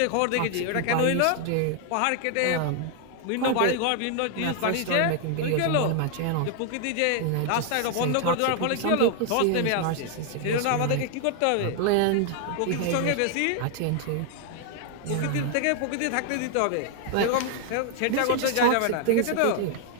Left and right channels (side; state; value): both; different; correlation 0.00